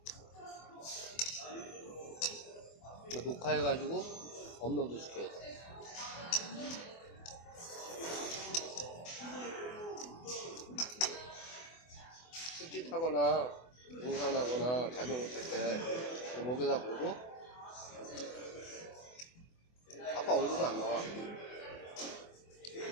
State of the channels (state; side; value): late; right; 24 ms